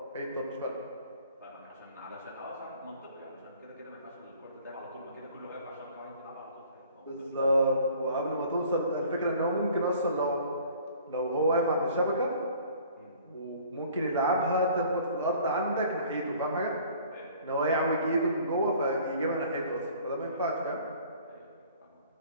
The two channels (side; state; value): both; inverted; correlation -0.52